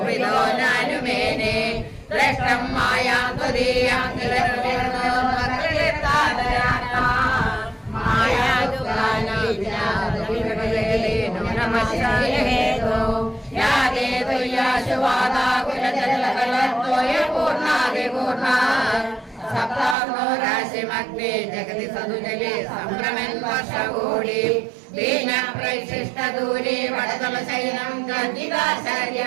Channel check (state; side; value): drops out; left; at 20.0 s